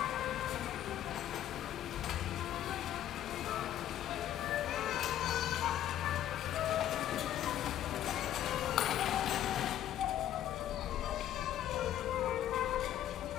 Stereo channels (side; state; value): right; quieter; 11.7 dB